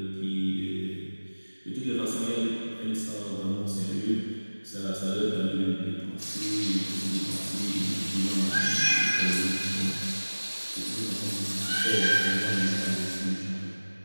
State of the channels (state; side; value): inverted; both; correlation -1.00